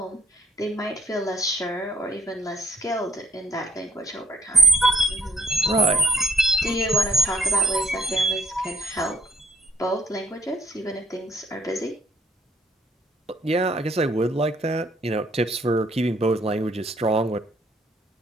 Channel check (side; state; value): both; normal; correlation 0.62